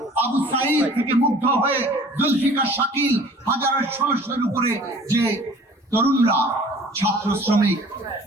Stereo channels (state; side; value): normal; both; correlation 0.49